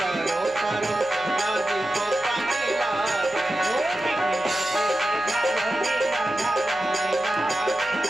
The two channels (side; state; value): right; noise; hum, 25 dB below the sound